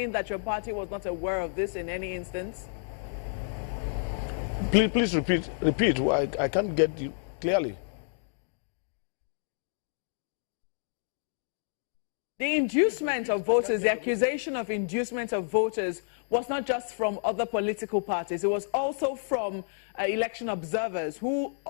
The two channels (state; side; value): silent; right; digital silence